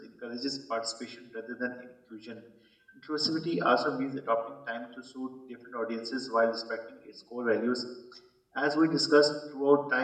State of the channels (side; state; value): both; identical; correlation 1.00